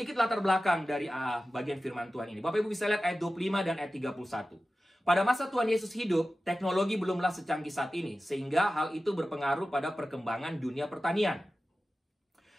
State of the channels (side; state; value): both; normal; correlation 0.95